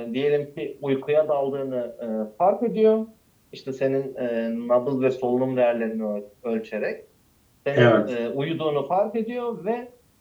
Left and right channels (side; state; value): both; identical; correlation 1.00